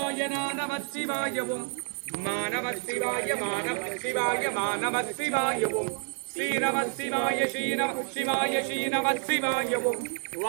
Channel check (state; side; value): silent; left; 57 dB below the other